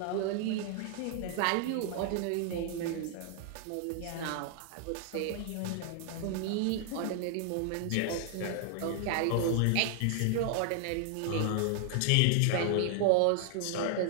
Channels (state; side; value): different; both; correlation 0.00